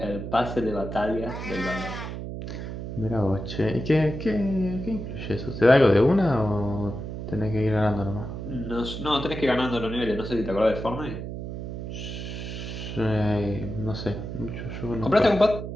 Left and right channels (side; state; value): right; noise; hum, 7 dB below the sound